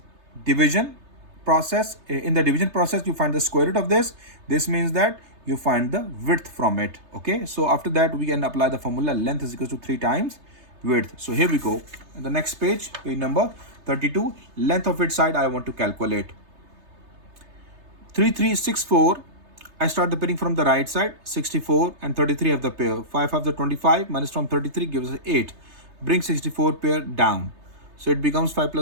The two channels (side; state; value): left; late; 3.3 ms